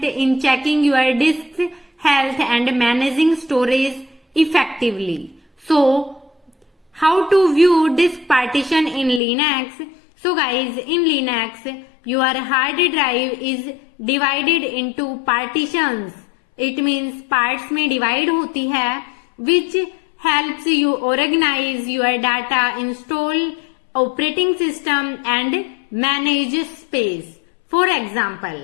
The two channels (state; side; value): drops out; right; at 9.2 s